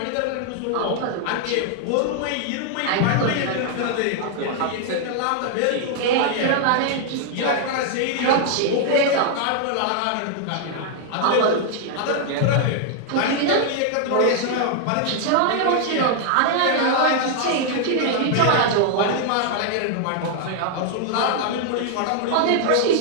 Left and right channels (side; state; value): both; different; correlation 0.00